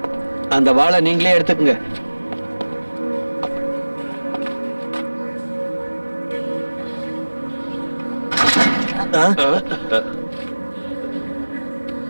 அந்த வாளை நீங்களே எடுத்துக்குங்க.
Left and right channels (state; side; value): inverted; both; correlation -1.00